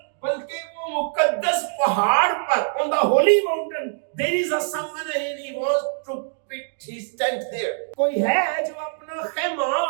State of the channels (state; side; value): silent; left; digital silence